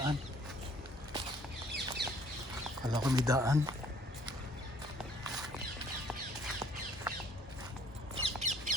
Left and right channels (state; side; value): normal; both; correlation 0.58